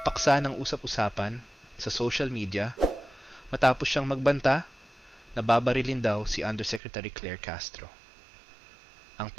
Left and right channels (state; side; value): drops out; left; at 6.8 s